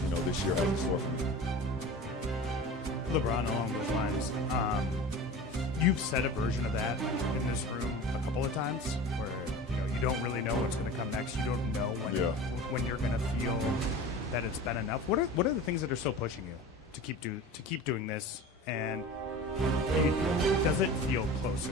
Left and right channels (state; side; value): normal; both; correlation 0.35